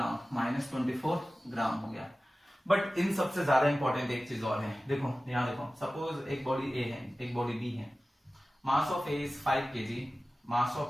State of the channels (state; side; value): normal; both; correlation 0.96